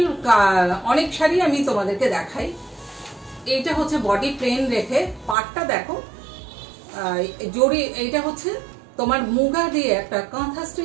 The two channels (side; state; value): left; drops out; at 5.4 s